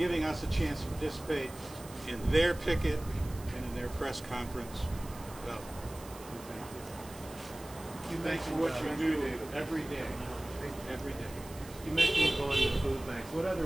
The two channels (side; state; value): right; noise; hiss, 18 dB below the sound